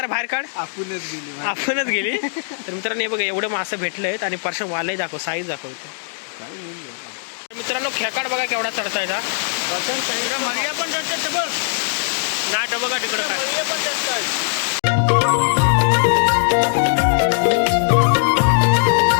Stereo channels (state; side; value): silent; right; digital silence